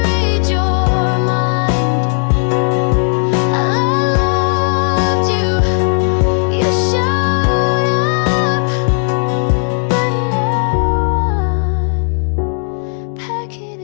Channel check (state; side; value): silent; right; 60 dB below the other